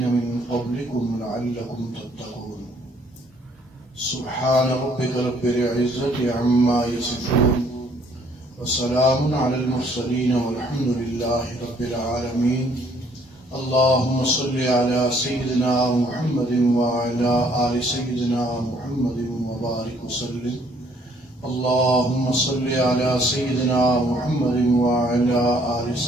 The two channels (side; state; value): both; normal; correlation 0.63